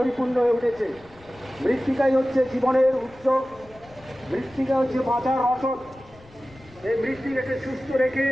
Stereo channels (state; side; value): noise; left; rumble, 25 dB below the sound